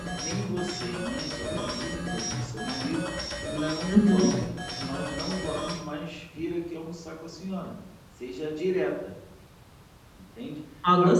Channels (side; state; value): both; identical; correlation 1.00